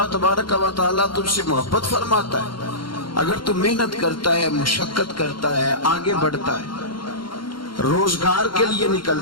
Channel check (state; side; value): late; right; 0.73 ms